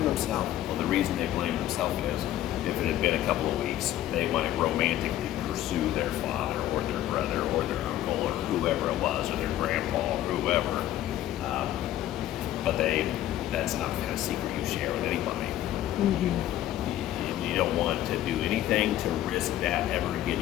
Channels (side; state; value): right; quieter; 13.3 dB